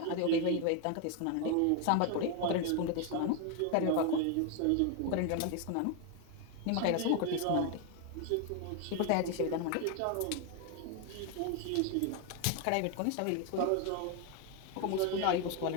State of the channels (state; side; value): different; both; correlation 0.01